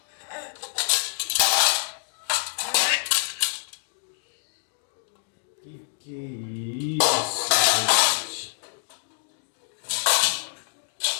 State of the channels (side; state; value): right; silent; digital silence